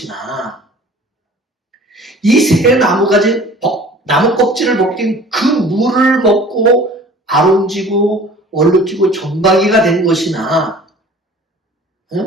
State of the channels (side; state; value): both; normal; correlation 0.47